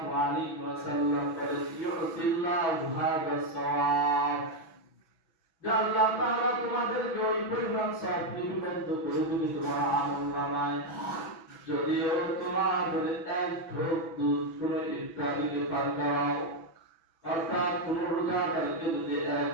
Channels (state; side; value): late; right; 6.0 ms